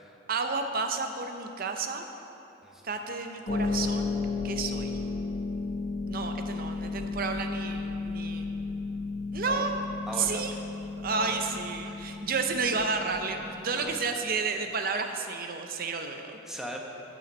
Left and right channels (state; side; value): normal; both; correlation 0.22